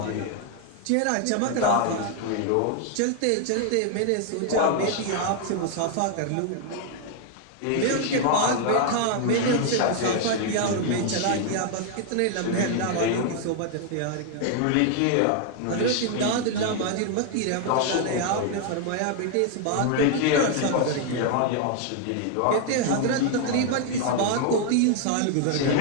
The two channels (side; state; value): both; different; correlation 0.00